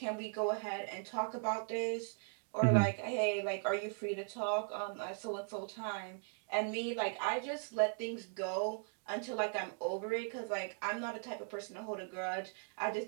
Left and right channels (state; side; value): silent; left; 52 dB below the other